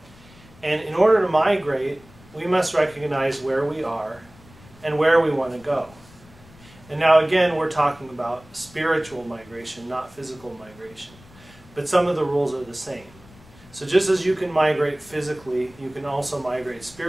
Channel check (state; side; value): noise; left; rumble, 24 dB below the sound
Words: And in order to migrate, we must recognize where we are and where we want to go. And now again, we're talking about spiritual migration, not physical migration. But some of the rules are the same. So just as you can migrate physically, you can also migrate